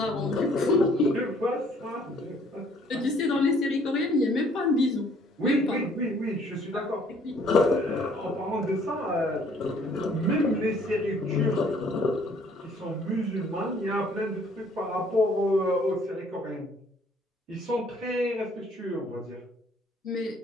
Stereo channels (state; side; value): normal; both; correlation 0.60